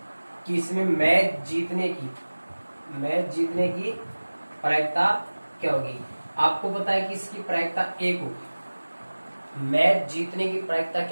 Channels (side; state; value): both; inverted; correlation -1.00